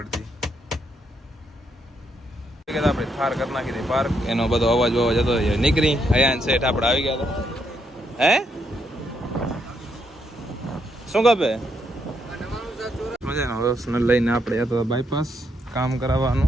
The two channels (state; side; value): normal; both; correlation 0.77